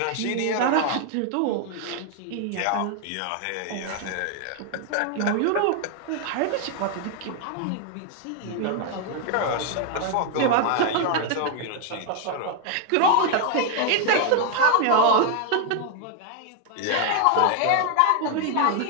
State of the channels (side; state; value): both; different; correlation 0.00